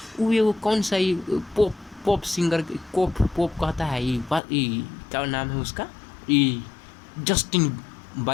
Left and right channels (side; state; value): right; drops out; at 4.4 s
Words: वो कौन सा ही पॉप सिंगर पॉप कहता है, ये क्या नाम है उसका, ये जस्टिन